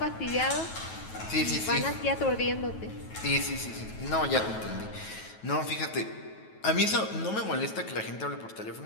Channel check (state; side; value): late; right; 9.2 ms